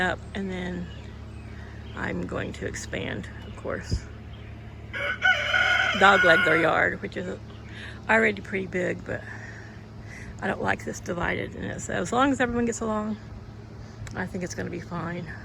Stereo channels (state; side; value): identical; both; correlation 1.00